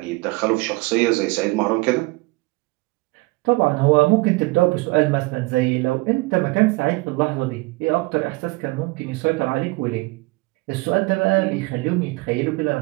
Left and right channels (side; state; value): left; quieter; 24.4 dB